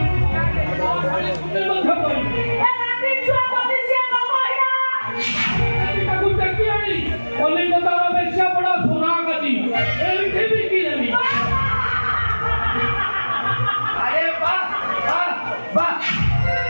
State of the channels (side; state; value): both; inverted; correlation -1.00